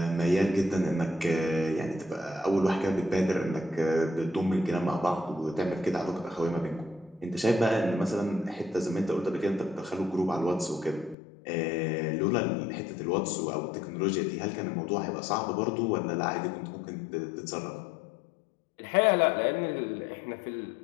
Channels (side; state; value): right; drops out; at 11.2 s